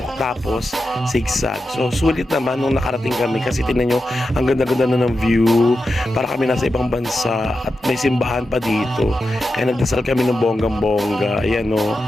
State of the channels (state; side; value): normal; both; correlation 0.90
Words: tapos zigzag. So sulit naman nung nakarating kami kasi tingnan nyo ang ganda-ganda na ng view. Para kami nasa ibang bansa at may simbahan pa dito. Kaya nagdasal kami ng bonggang-bongga. Ayan o,